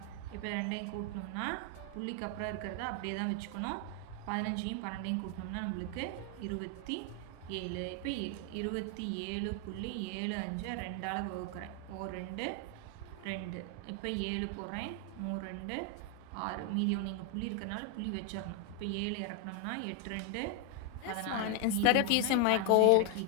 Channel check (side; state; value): both; different; correlation 0.00